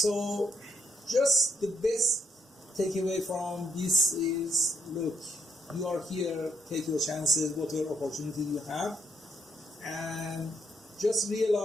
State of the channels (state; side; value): normal; both; correlation 0.74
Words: just the best takeaway from this is, look, you are here, take your chances, whatever opportunity you have, and just